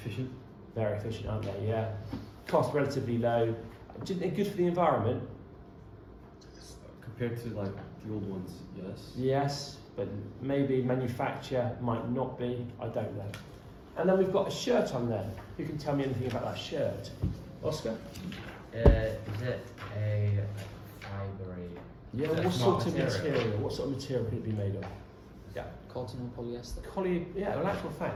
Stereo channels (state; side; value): identical; both; correlation 1.00